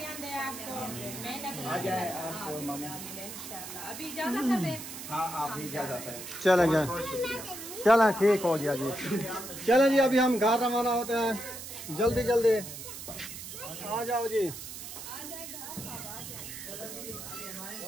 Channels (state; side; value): noise; right; hiss, 10 dB below the sound